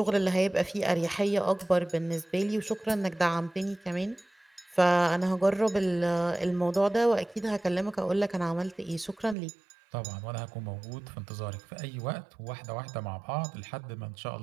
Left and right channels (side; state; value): left; drops out; at 9.3 s